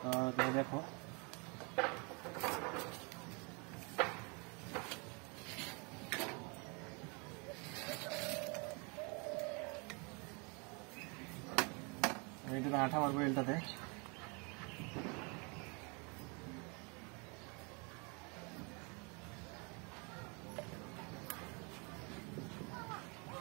তোমরা দেখো, আঠা মারবো এলটাতে।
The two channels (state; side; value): quieter; left; 32.3 dB